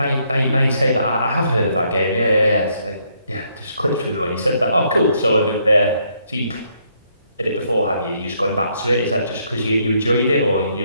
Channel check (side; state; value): both; inverted; correlation -0.72